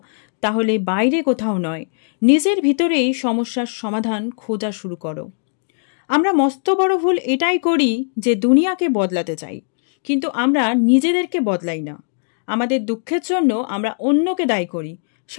তাহলে বাইরে কোথাও নয়, নিজের ভিতরেই সমস্যার সমাধান খোঁজা শুরু করো। আমরা মস্ত বড় ভুল এটাই করি যে দুনিয়াকে বদলাতে চাই, কিন্তু আমরা নিজেদেরকে বদলাই না। আমাদের দুঃখের জন্য আমরা অন্যকে দায়ী করি,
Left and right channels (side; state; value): right; silent; digital silence